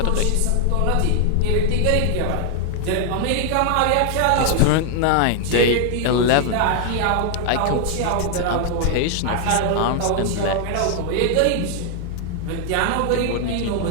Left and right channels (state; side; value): different; both; correlation 0.00